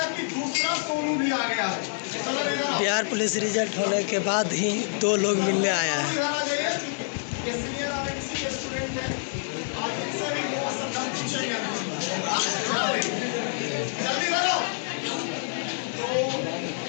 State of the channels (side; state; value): right; silent; digital silence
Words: बिहार पुलिस रिजल्ट होने के बाद ही 2 लोग मिलने आया है।